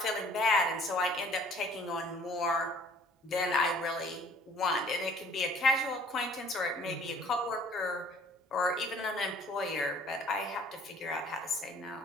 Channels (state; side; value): normal; both; correlation 0.55